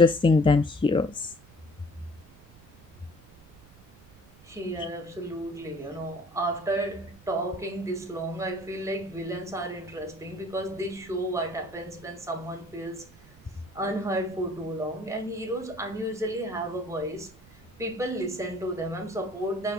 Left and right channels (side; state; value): right; noise; rumble, 23 dB below the sound